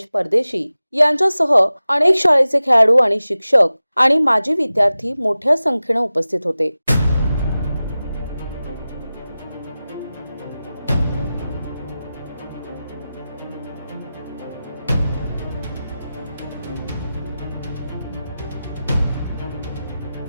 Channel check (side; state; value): both; inverted; correlation -0.95